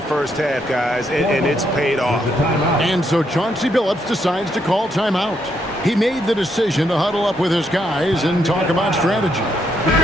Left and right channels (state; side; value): normal; both; correlation 0.76